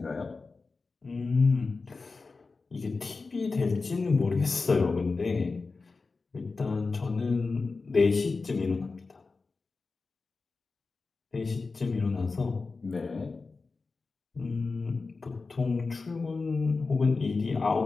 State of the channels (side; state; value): right; quieter; 4.1 dB